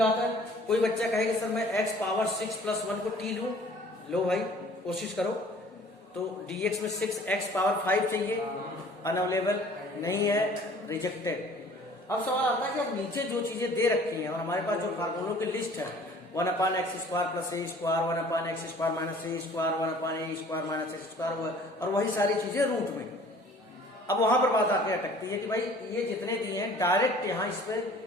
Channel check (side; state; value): both; normal; correlation 0.51